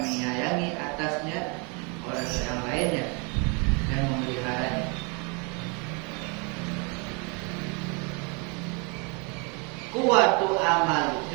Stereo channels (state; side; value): quieter; left; 33.0 dB